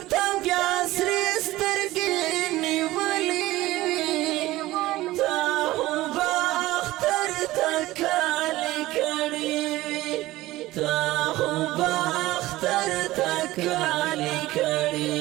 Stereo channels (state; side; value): quieter; left; 17.4 dB